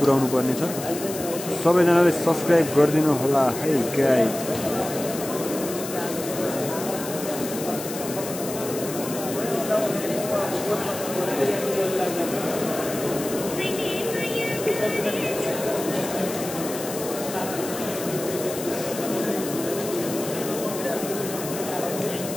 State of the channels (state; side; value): noise; left; hiss, 9 dB below the sound